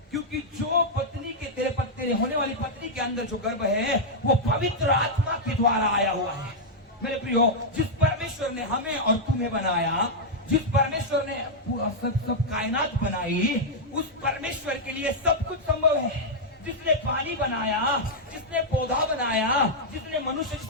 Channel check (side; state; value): both; normal; correlation -0.05